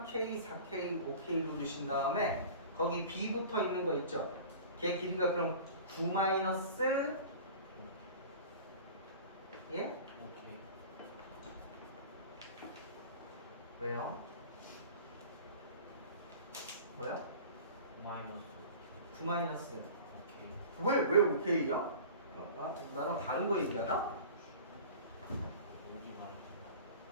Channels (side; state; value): both; inverted; correlation -0.40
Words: 4K, 5K로 두신 다음에 거기 B 붙어 있는 거 있죠? 걔 길이가 그럼 9 마이너스 예? 오케이. 왜요? 뭐야? 마이너스. 9 마이너스 오케이. 왜 5K야? 나랑 다른 거 얘기하나?